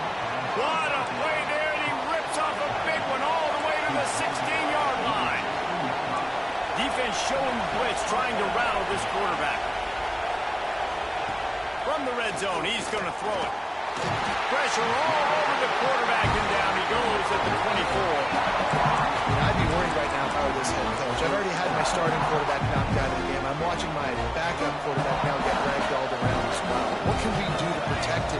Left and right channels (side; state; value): both; identical; correlation 1.00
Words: What a play there, and he rips off a big one all the way to the 16-yard line. Defense showing blitz, trying to rattle this quarterback. From the red zone, he's going to throw it. Pressure all over the quarterback, and down he goes at the 24. I'd be worried right now if I were this head coach. I've already had my starting quarterback knocked out of the game. I'm watching my backup quarterback now get ragdolled around as well. What can we do to protect